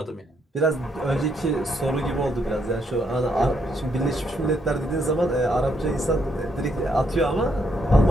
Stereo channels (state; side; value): normal; both; correlation 0.74